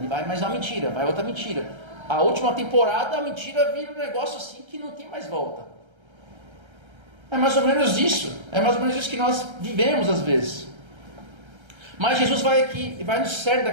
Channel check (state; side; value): late; left; 1.3 ms